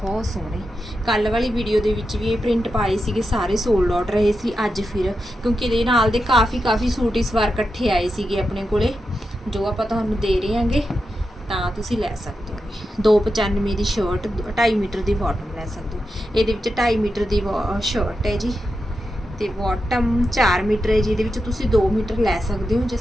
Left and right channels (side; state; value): both; normal; correlation 0.88